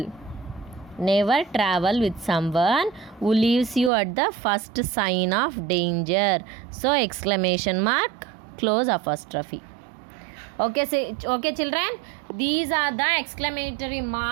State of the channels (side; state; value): left; drops out; at 3.9 s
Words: Never travel with someone who leaves you at the first sign of danger. So exclamation mark, close apostrophe. Okay, so, okay children, these are the exclamatory